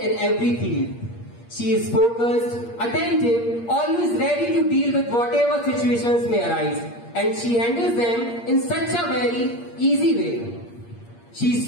every field. She is focused, attentive, always ready to deal with whatever situations may arise, and she handles them in such a very easy way. She is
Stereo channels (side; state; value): right; late; 8.6 ms